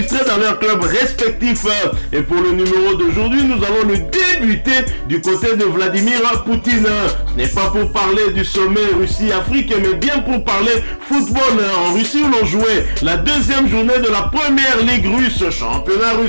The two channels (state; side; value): inverted; both; correlation -1.00